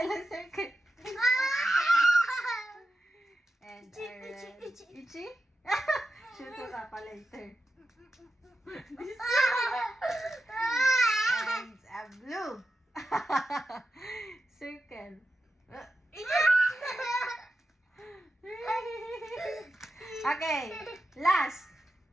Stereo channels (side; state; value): both; normal; correlation 0.90